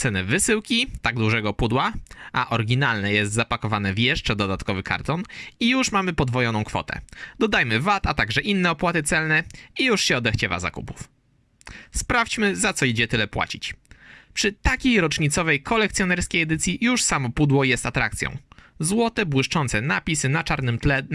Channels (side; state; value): both; identical; correlation 1.00